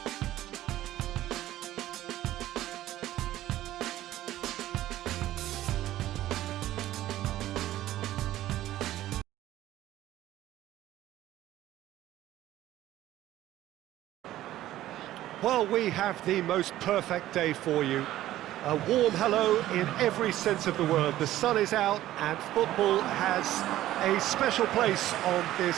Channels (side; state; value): left; quieter; 14.2 dB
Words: Well, we have the most perfect day for you. A warm hello in every sense of the word. The sun is out and football has a special place on